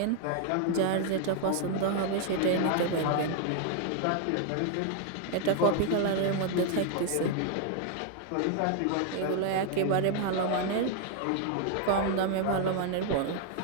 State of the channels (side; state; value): both; different; correlation 0.00